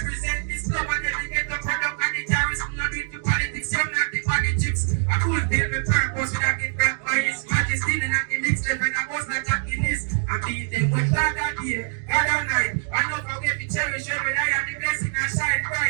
this club and then we get the product and the terrorists. Not do it to politics, you're not the politics. I could build my purpose with a gift back by his majesty. And I can mix them and I was not attacking this. I beat them with God that day, God that night. I know how we cherish every day and the blessing I shine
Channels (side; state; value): left; silent; digital silence